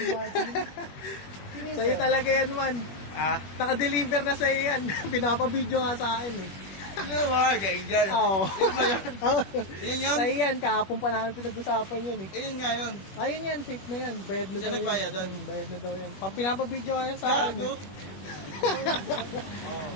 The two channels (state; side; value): late; right; 21 ms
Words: Sa'yo talaga yan, man. Ah? Naka-deliver na sa'yo yan. Pinapabidyo nga sa akin eh. Ano ba? Angel. Oo. Yun ba yun? Yun yun? Sa'yo yan, kahapon pa namin pinag-usapan yan eh. Ayun nga yun. Ayun yan, safe na yan. Bayad na Siya daw yan. nagbayad doon? Bayad na daw yan. Pinapabidyo nga yan sa akin Gago. eh.